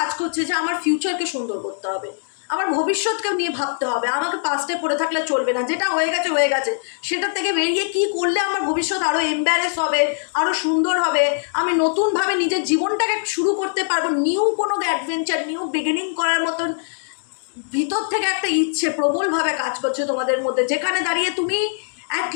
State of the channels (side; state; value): right; silent; digital silence